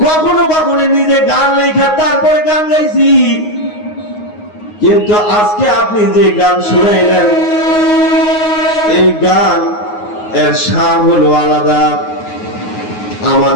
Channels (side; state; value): right; late; 9.5 ms